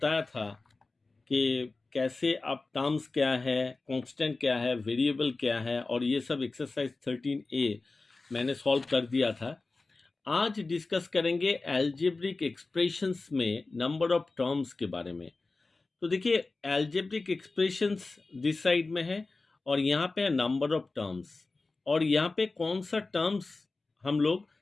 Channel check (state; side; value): quieter; right; 3.5 dB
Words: था कि कैसे आप टर्म्स क्या है, कांस्टेंट क्या है, वेरिएबल क्या है और ये सब एक्सरसाइज 13A मैंने सॉल्व कर दिया था। आज डिस्कस करेंगे एल्जेब्रिक एक्सप्रेशंस में नंबर ऑफ टर्म्स के बारे में। तो देखिए, एल्जेब्रिक एक्सप्रेशंस दिस साइड में है और यहाँ पे है नंबर ऑफ टर्म्स, और यहाँ पे कौन सा टर्म्स हम लोग